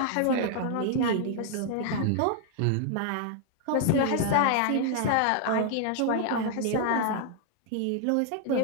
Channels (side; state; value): both; different; correlation 0.00